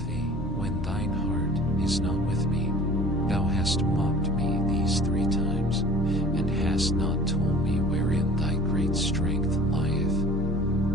thee, when thine heart is not with me? Thou hast mocked me these 3 times, and hast not told me wherein thy great strength lieth.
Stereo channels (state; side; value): normal; both; correlation 0.46